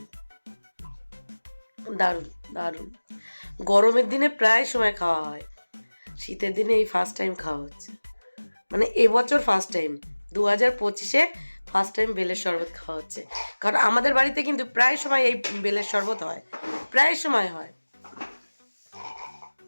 দারুণ দারুণ। গরমের দিনে প্রায় সময় খাওয়া হয়, শীতের দিনে এই ফার্স্ট টাইম খাওয়া হচ্ছে। মানে এবছর ফার্স্ট টাইম, 2025-এ ফার্স্ট টাইম বেলের শরবত খাওয়া হচ্ছে। কারণ আমাদের বাড়িতে কিন্তু প্রায় সময় এই বেলের শরবত হয়, প্রায় সময় হয়।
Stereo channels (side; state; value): both; inverted; correlation -1.00